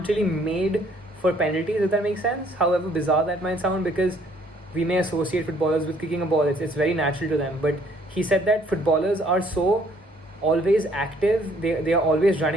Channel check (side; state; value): both; normal; correlation 0.63